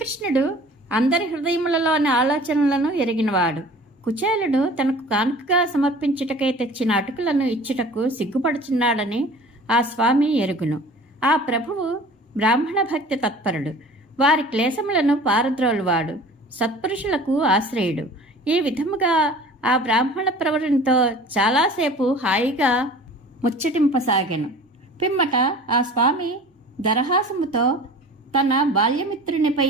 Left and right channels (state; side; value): normal; both; correlation 0.43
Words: అందరి హృదయములలోని ఆలోచనలను ఎరిగినవాడు. కుచేలుడు తనకు కానుకగా సమర్పించుటకై తెచ్చిన అటుకులను ఇచ్చుటకు సిగ్గుపడుచున్నాడని ఆ స్వామి ఎరుగును. ఆ ప్రభువు బ్రాహ్మణ భక్తి తత్పరుడు. వారి క్లేశములను పారద్రోలువాడు. సత్పురుషులకు ఆశ్రయుడు. ఈ విధముగా ఆ బ్రాహ్మణ ప్రవరునితో చాలాసేపు హాయిగా ముచ్చటింపసాగెను. పిమ్మట ఆ స్వామి దరహాసముతో తన